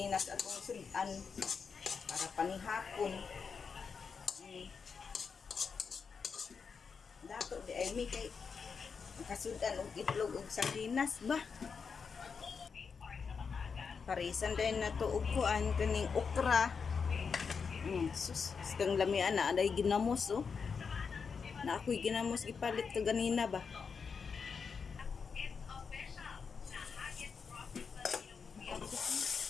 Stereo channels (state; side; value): quieter; right; 5.7 dB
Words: atong sudan para panihapon. Dato di ay mi kay makasudan og itlog og sardinas ba. Parisan din na to og kuan kaning okra. Sus, kang lamian na aday ginamos oh. Na ako'y ginamos gipalit to ganina ba.